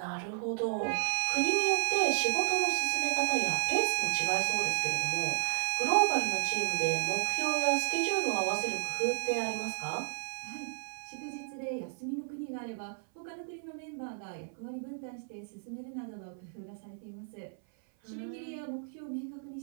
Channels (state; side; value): silent; left; 55 dB below the other